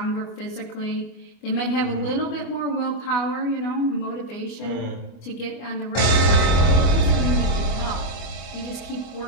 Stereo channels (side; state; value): right; late; 24 ms